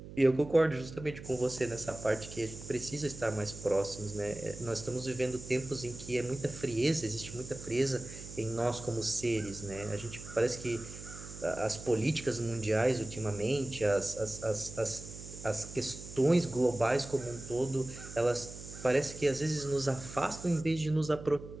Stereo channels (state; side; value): noise; right; hum, 13 dB below the sound